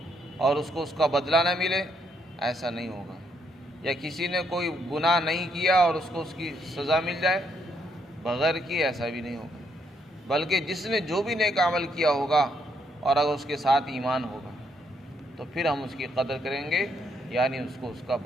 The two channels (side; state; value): both; normal; correlation 0.74